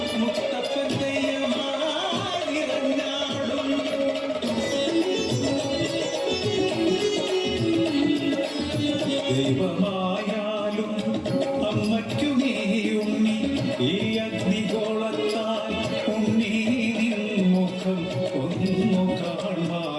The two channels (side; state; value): both; identical; correlation 1.00